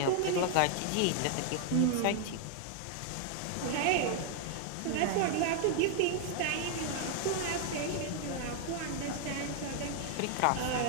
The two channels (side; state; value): both; different; correlation 0.00